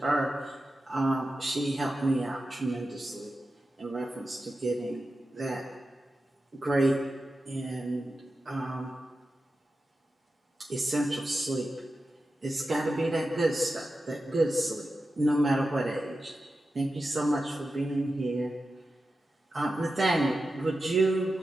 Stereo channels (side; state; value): both; normal; correlation 0.92